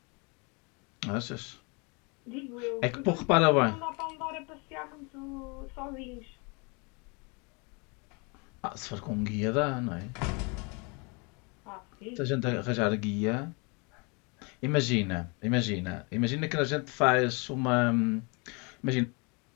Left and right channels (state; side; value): quieter; right; 31.3 dB